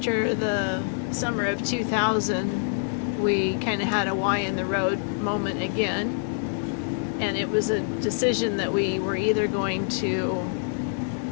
the summer of 2000 we kind of had a Y in the road moment again, and it was a decision that we were either going to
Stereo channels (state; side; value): silent; right; digital silence